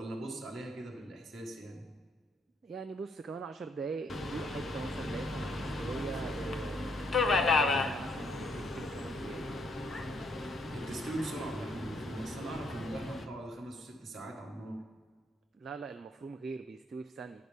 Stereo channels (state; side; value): normal; both; correlation 0.72